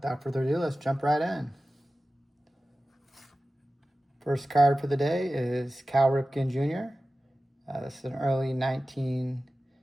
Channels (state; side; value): normal; both; correlation 0.95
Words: further ado, let's jump right in. First card for the day is Cal Ripken Jr. This is an early